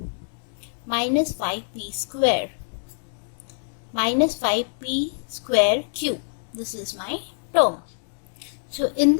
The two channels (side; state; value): right; silent; digital silence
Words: minus 5p square, minus 5p square cube. This is my term. So in